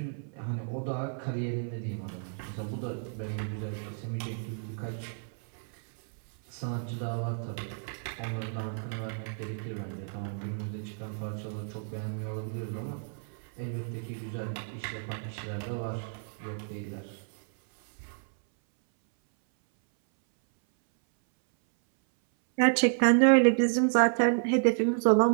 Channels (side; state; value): left; silent; 57 dB below the other